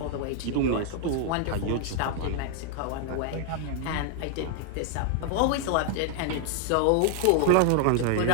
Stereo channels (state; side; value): different; both; correlation 0.00